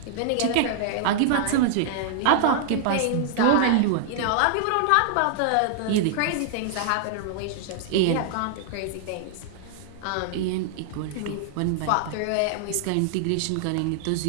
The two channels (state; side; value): different; both; correlation -0.01